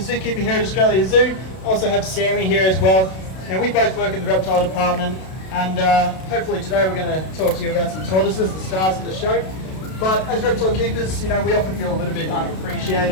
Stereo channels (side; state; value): right; late; 32 ms